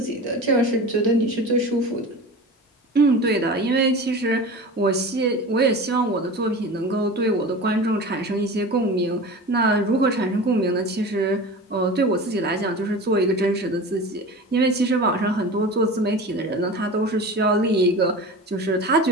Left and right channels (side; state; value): both; normal; correlation 0.33